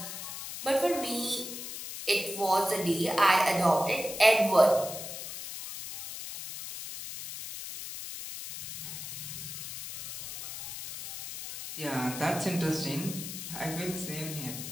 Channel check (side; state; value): left; noise; hiss, 8 dB below the sound